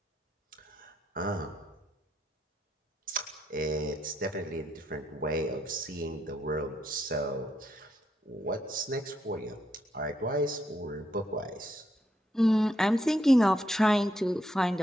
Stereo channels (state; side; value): normal; both; correlation 0.78